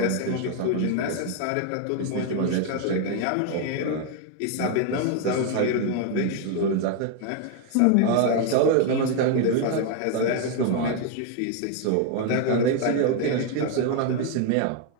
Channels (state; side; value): different; both; correlation 0.01